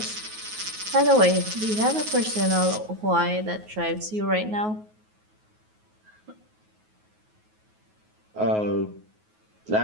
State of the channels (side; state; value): left; late; 9.4 ms